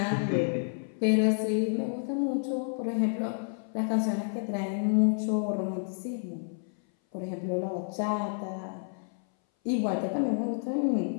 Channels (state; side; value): silent; right; 58 dB below the other